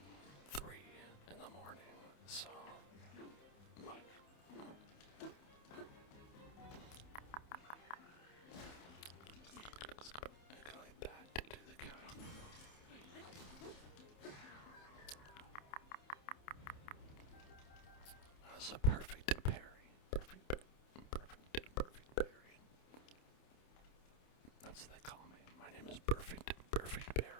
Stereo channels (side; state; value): right; late; 28 ms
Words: 3 in the morning, so. Go like that to do the count. That was a perfect parry. Perfect parry. That's what they call me. My name is Perfect Berry.